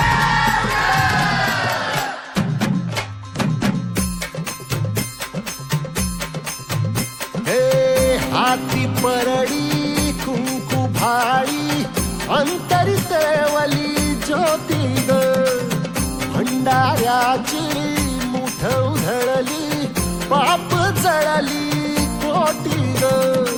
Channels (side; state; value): both; identical; correlation 1.00